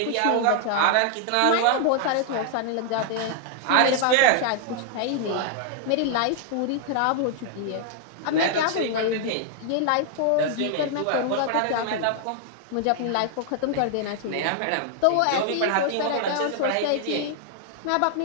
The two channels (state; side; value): different; both; correlation 0.00